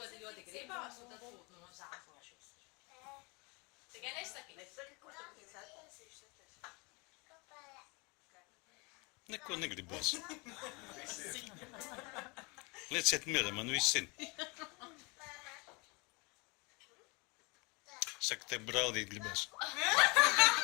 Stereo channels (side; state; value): right; quieter; 28.7 dB